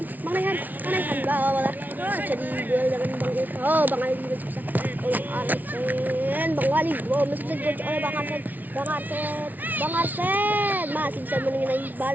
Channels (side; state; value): left; late; 0.080 ms